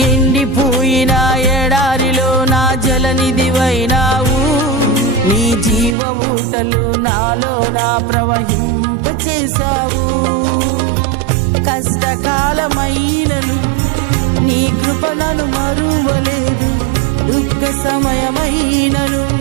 ఎండిపోయిన ఎడారిలో నా జలనిధివైనావు, నీ జీవ ఊటలు నాలోన ప్రవహింపచేశావు. కష్టకాలమైనను నీ కృప నన్ను మరువలేదు, దుఃఖ సమయమైనను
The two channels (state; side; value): drops out; left; at 6.0 s